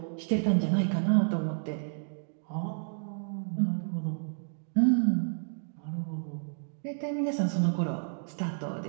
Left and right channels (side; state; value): left; silent; digital silence